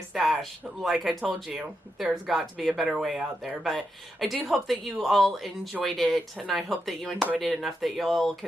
Stash. Like I told you, there's got to be a better way out there. But I do hope that you all enjoyed it, and I hope that you enjoyed it enough that you'll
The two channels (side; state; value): both; normal; correlation 0.85